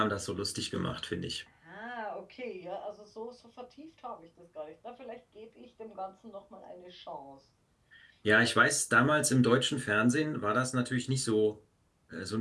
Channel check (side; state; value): both; identical; correlation 1.00